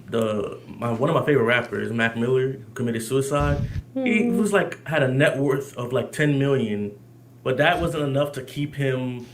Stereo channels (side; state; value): both; identical; correlation 1.00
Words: of my favorite rappers, Mac Miller, who committed suicide. He was like had a net worth of like 10 million, but that wasn't enough to keep him